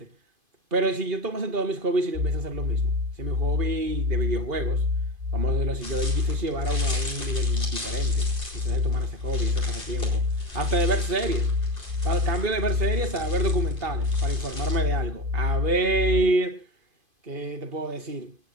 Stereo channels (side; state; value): left; late; 2.5 ms